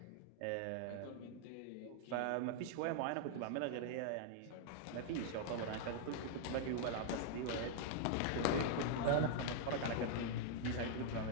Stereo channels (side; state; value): both; different; correlation 0.00